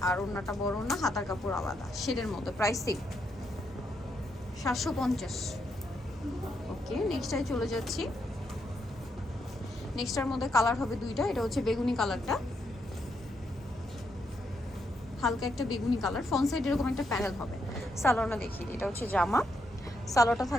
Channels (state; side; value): normal; both; correlation 0.79